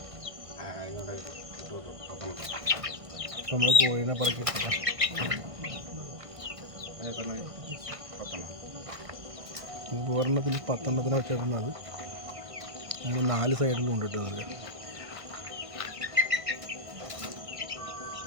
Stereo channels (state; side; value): late; left; 1.5 ms